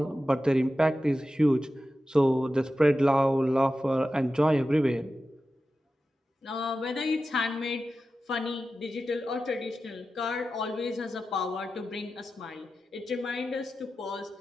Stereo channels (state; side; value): normal; both; correlation 0.93